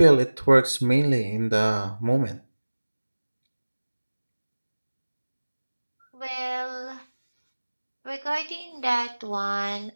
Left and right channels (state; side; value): inverted; both; correlation -1.00